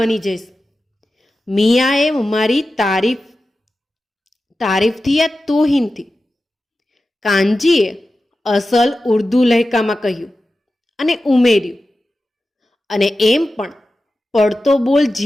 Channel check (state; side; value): normal; both; correlation 0.93